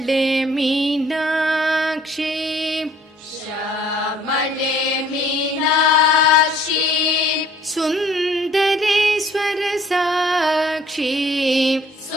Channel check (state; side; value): normal; both; correlation 0.57